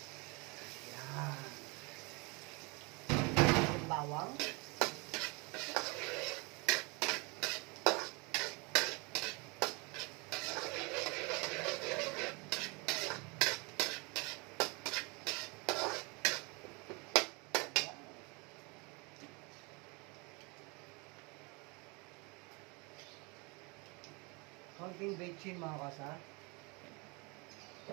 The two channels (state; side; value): quieter; left; 29.1 dB